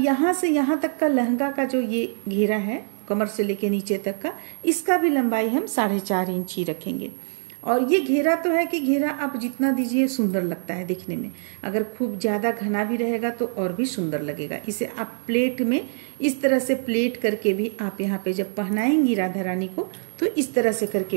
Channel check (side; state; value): left; silent; digital silence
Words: से यहाँ तक का लहंगा का जो ये घेरा है, कमर से लेके नीचे तक का, इसका भी लंबाई हम 4.5 इंच ही रखेंगे। और ये घेरा तो है कि घेरा आप जितना दीजिए सुंदर लगता है दिखने में। अगर खूब ज़्यादा घना भी रहेगा तो और भी सुंदर लगेगा। इसे आप प्लेट में इस तरह से प्लेट करके भी आप यहाँ पे जब पहनाएंगी राधा रानी को, तो इस तरह से